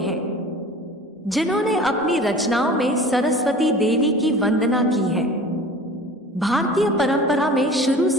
जिन्होंने अपनी रचनाओं में सरस्वती देवी की वंदना की है। भारतीय परंपरा में शुरू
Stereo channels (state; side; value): normal; both; correlation 0.41